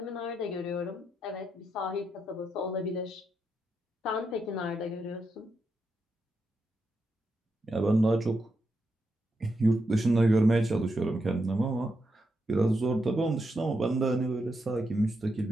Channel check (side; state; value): both; normal; correlation 0.84